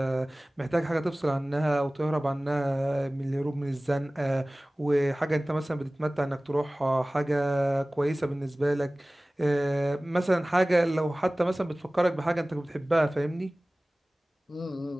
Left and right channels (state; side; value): normal; both; correlation 0.98